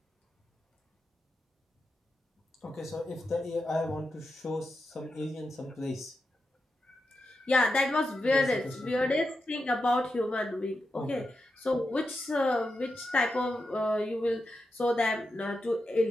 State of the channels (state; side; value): normal; both; correlation 0.88